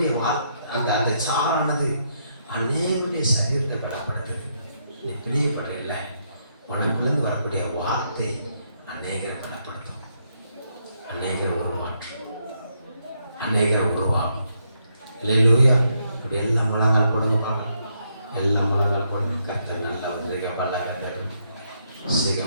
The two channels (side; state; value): both; inverted; correlation -0.77